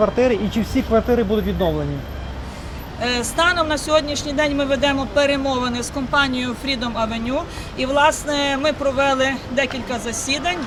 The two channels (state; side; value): identical; both; correlation 1.00